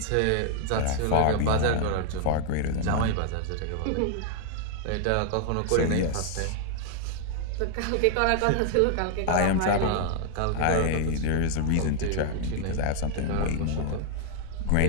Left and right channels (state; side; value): different; both; correlation 0.00